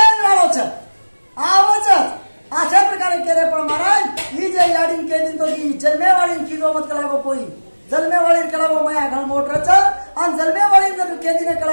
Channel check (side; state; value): both; inverted; correlation -1.00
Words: वाळोच आवच अशा प्रकारे केले पण महाराज ही जे याडीन केली तो की जन्मेवाळीन की मत करा कोई जन्मेवाळीन करा माया घण मोटरच आणि जन्मेवाळीन जर केदीने